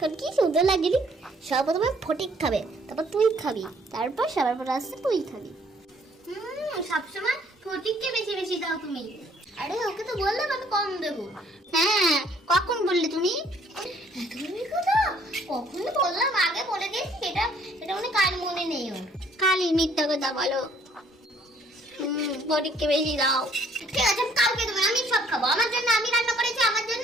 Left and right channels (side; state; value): both; normal; correlation 0.61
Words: কি সুন্দর লাগলি। সর্বপ্রথমে ফটিক খাবে, তারপর তুই খাবি, তারপর সবার পর আসছে তুই খাবি। সবসময় ফটিককে বেশি বেশি দাও তুমি। আরে ওকে তো বললাম আমি কম দেবো। হ্যাঁ, কখন বললে তুমি? তুমি কথা কখনো বললাম, আগে বলে দিয়েছি, এটা মানে কাল মনে নেই ওর। কালি মিথ্যা কথা বলো। ফটিককে বেশি দাও। ঠিক আছে, আমি কাউকে দেবো না, আমি সব খাবো। আমার জন্য আমি রান্না করেছি, আমার জন্য।